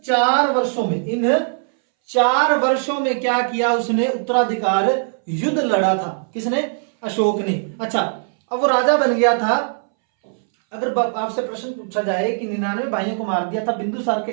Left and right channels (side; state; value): left; silent; 64 dB below the other